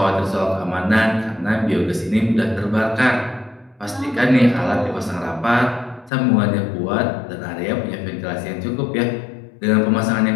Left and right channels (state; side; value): drops out; right; at 6.1 s